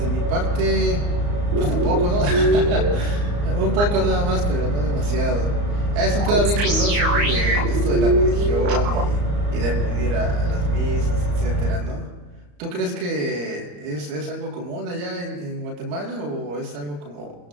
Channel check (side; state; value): left; late; 34 ms